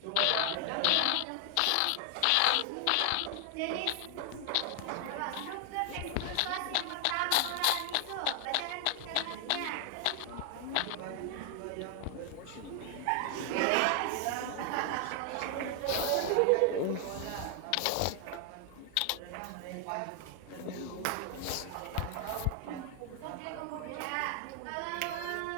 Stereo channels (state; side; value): different; both; correlation 0.00